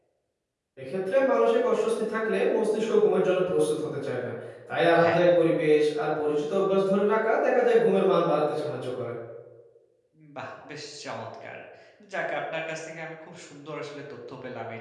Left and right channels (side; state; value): both; identical; correlation 1.00